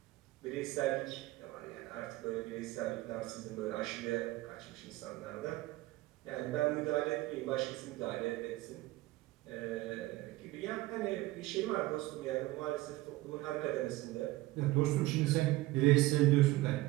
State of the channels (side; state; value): left; quieter; 18.4 dB